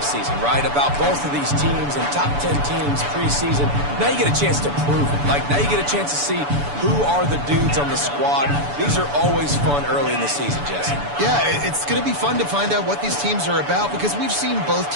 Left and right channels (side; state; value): left; late; 7.0 ms